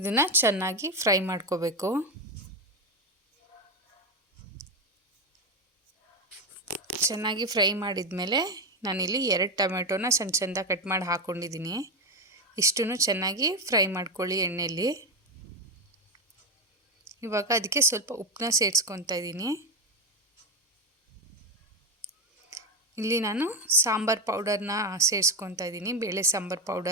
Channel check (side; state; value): both; normal; correlation 0.12